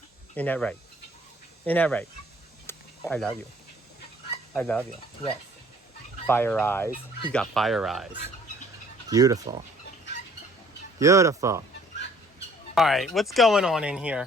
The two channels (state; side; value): normal; both; correlation 0.57